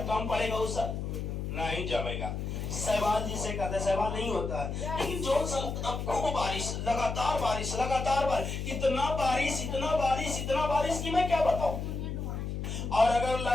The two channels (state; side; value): noise; left; hum, 4 dB below the sound